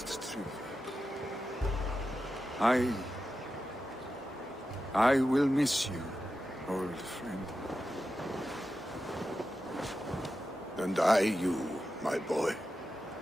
Tryggvi. I will miss you, old friend. And I you, my boy.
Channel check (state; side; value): normal; both; correlation 0.91